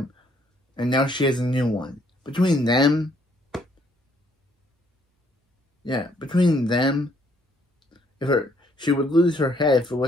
and now she has a new one. Between them, she would lose her head if it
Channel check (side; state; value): both; normal; correlation 0.67